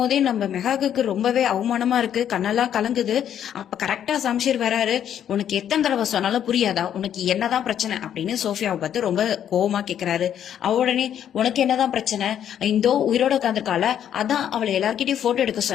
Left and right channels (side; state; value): right; quieter; 9.7 dB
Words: நம்ம மெகாக்கு ரொம்பவே அவமானமா இருக்கு, கண்ணெல்லாம் கலங்குது. அப்ப கரெக்டா சம்ஷீர் வராரு. உனக்கு எத்தனை தடவை சொன்னாலும் புரியாதா, உனக்கு என்னதான் பிரச்சனை அப்படின்னு சோஃபியாவை பார்த்து ரொம்ப கோவமா கேக்குறாரு. அவ உடனே, உனக்கு என்னதான் பிரச்சனை, இந்தோ உயிரோட உட்காந்துருக்கால, அதான் அவளை எல்லார்கிட்டயும் போட்டோ எடுக்க